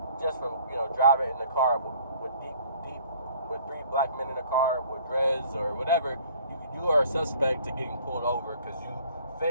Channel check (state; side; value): inverted; both; correlation -0.54